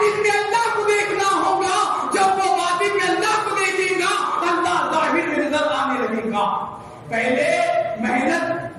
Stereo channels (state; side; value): identical; both; correlation 1.00